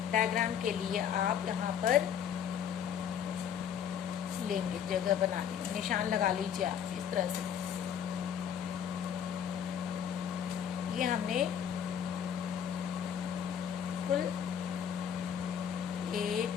डायग्राम के लिए आप यहाँ पर लेंगे, जगह बना लेंगे, निशान लगा लीजिए आप इस तरह से। ये हमने कुल 1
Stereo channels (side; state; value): right; quieter; 8.6 dB